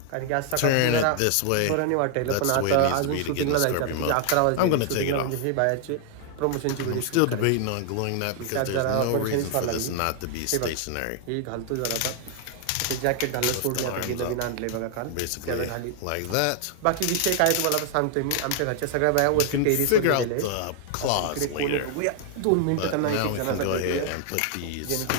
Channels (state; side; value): different; both; correlation 0.00